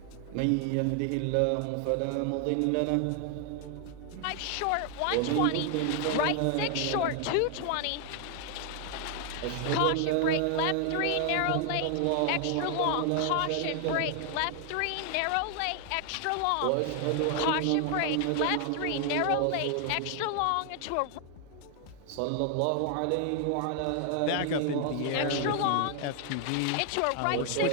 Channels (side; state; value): both; different; correlation 0.00